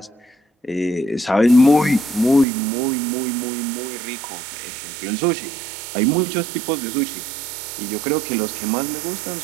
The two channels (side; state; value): left; drops out; at 2.5 s